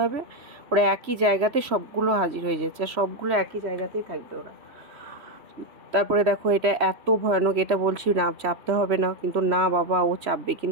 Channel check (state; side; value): late; left; 3.0 ms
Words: হবে। ওরা একই জায়গাতে সবগুলো হাজির হয়ে যাচ্ছে, আর সবগুলো একই জায়গাতেই থাকবে ওরা। তারপরে দেখো এটা এত ভয়ানক, এটা বলছি না চাপতে হবে না, কিন্তু না বাবা ও চাপবে,